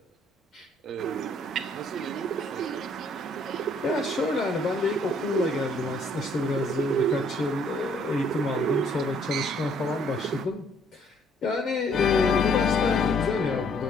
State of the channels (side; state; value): both; normal; correlation 0.63